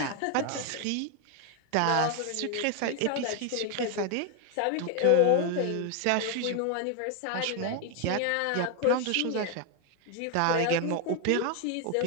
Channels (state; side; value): different; both; correlation 0.01